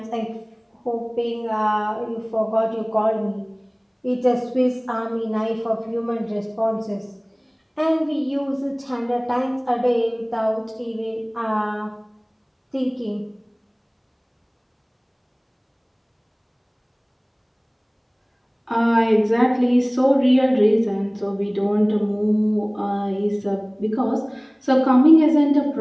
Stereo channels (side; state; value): both; identical; correlation 1.00